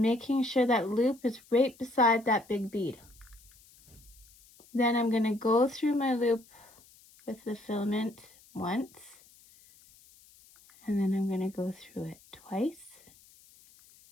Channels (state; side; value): noise; left; hiss, 26 dB below the sound